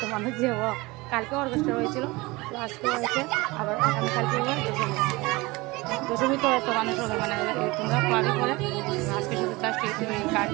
মানুষ যে কালকে অর্কেস্ট্রা হয়েছিল, তো আজকে হয়েছে আবার আগামীকালকে দশমী তো এত মানুষ হবে, মানে তোমরা পাবে করে। আজকে শুধু জাস্ট এই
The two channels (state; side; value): quieter; left; 22.7 dB